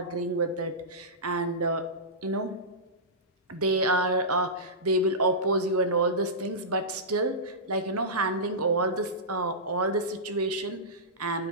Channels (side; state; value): both; normal; correlation -0.18